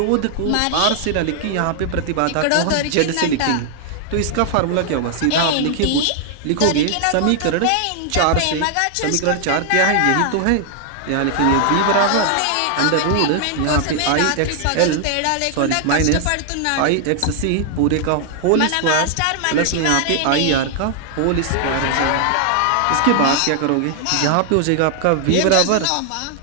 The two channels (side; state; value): both; different; correlation 0.00